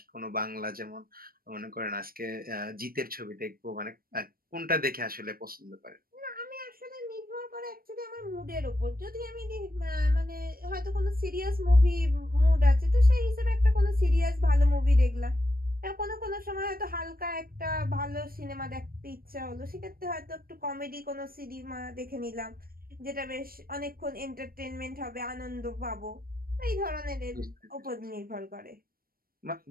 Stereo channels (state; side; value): late; left; 0.43 ms